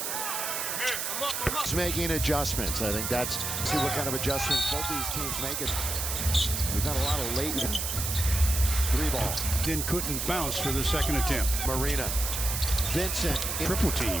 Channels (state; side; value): noise; right; hiss, 2 dB below the sound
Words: It's making adjustments. I think that's see what kind of adjustments both these teams make. It. We've got a lot of late 3-ball. Then couldn't bounce for the second attempt. Marina. Vincent. Triple